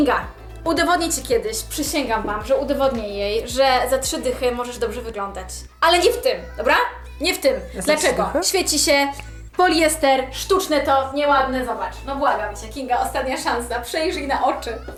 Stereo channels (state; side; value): identical; both; correlation 1.00